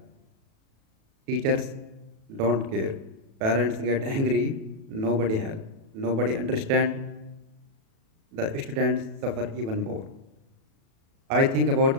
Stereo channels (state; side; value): late; left; 37 ms